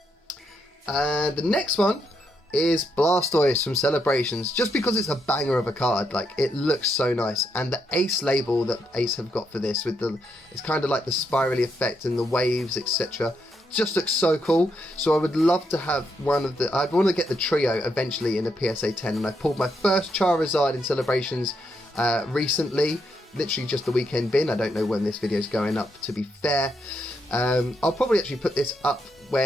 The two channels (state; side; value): normal; both; correlation 0.79